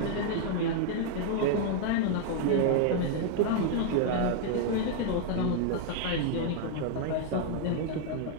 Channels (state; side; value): different; both; correlation 0.00